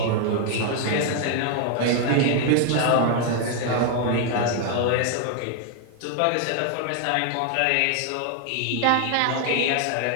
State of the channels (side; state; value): both; different; correlation 0.00